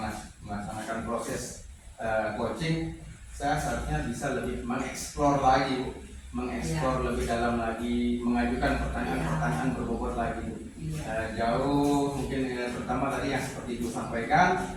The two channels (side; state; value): both; identical; correlation 1.00